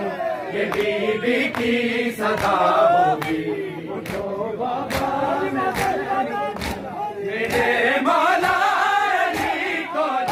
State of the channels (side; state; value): both; identical; correlation 1.00